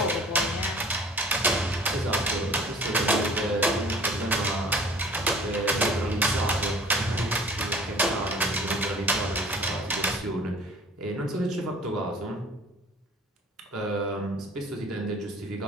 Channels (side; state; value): both; normal; correlation 0.49